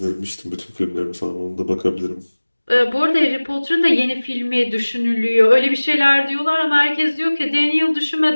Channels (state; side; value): inverted; both; correlation -1.00